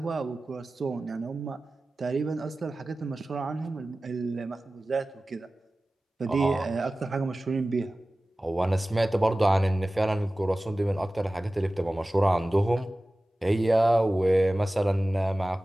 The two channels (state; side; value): normal; both; correlation 0.97